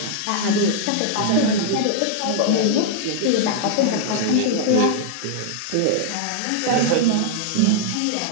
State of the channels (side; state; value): both; different; correlation -0.01